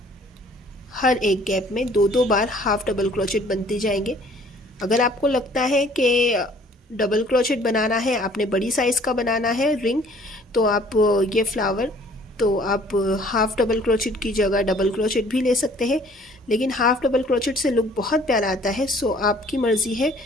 हर एक गैप में 2 बार हाफ डबल क्रोचेट बनते जाएंगे। अगर आपको लगता है कि डबल क्रोचेट बनाना है, आपने बड़ी साइज़ का बनाना है रिंग, तो आप ये फ्लावर तो आप हाफ डबल क्रोचेट की जगह डबल क्रोचेट भी ले सकते हैं, लेकिन हाफ डबल क्रोचेट से लुक बहुत प्यारा आता है। सो आपकी मर्ज़ी है।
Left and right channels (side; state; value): both; normal; correlation 0.56